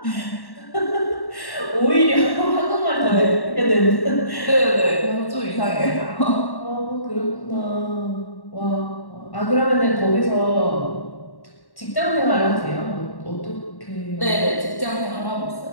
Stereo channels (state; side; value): late; right; 1.1 ms